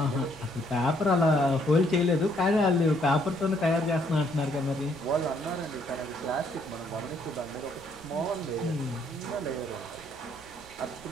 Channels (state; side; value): noise; right; rumble, 23 dB below the sound